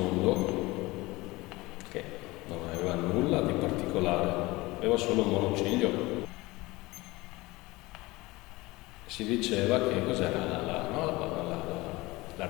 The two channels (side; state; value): right; quieter; 21.3 dB